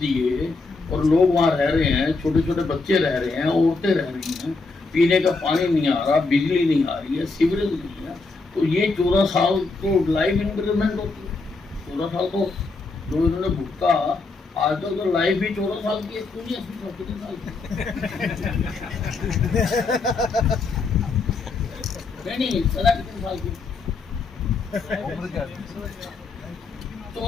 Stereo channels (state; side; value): quieter; right; 3.9 dB